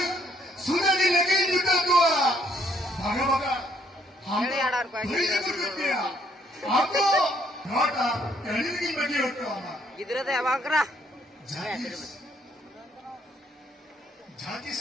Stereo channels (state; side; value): normal; both; correlation 0.68